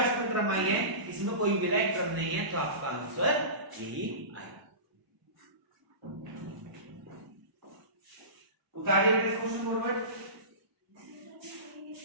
में टर्म आई है इसमें कोई मिला एक टर्म नहीं है, तो आपका आंसर यही आएगा। उतारिए बेटा क्वेश्चन फॉरवर्ड।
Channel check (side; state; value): left; late; 1.0 ms